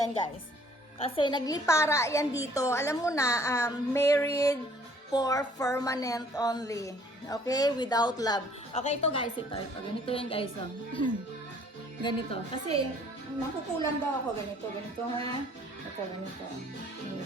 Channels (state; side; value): normal; both; correlation 0.58